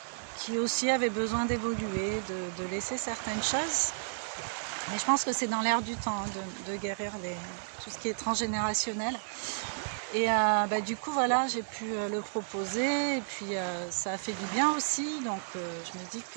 qui aussi avaient besoin d'évoluer, de laisser certaines choses. Mais je pense que c'est dans l'air du temps de guérir tout ce qui est transgénérationnel. Et du coup, voilà, j'ai pu le proposer. Et puis, ça a fait du bien aussi. Donc, je me dis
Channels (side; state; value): left; silent; digital silence